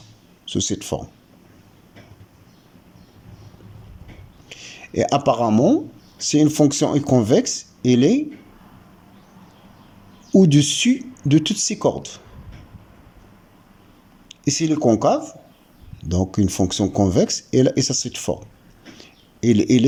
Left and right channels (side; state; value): both; identical; correlation 1.00